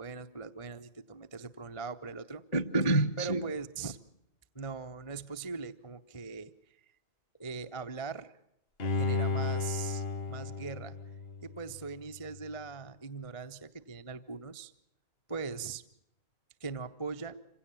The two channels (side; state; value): right; late; 1.6 ms